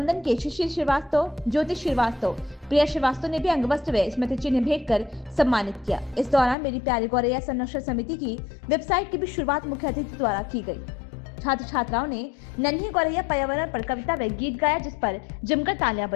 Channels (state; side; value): drops out; right; at 6.6 s